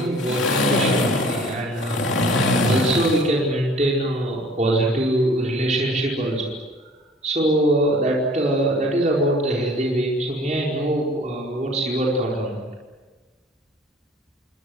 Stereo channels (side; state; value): both; normal; correlation 0.50